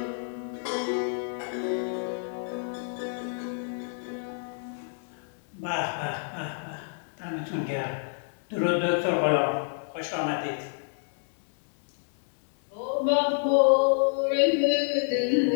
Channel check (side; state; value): right; silent; 59 dB below the other